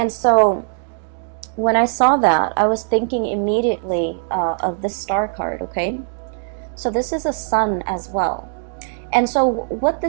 so when I saw that, I was thinking immediately of this star card, okay? So this is a sun as well. And so what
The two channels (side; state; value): left; silent; digital silence